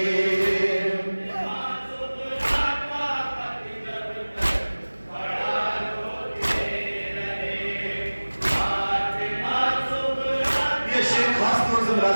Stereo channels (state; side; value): inverted; both; correlation -1.00